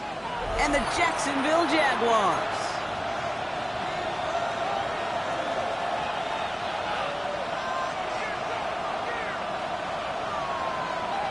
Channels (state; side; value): identical; both; correlation 1.00